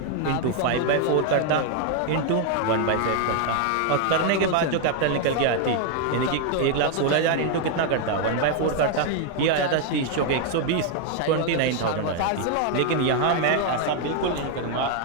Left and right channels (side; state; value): both; different; correlation 0.00